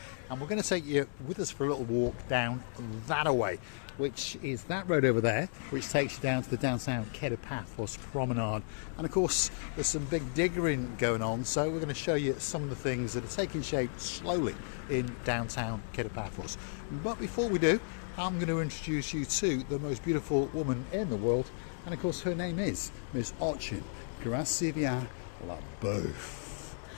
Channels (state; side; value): silent; right; digital silence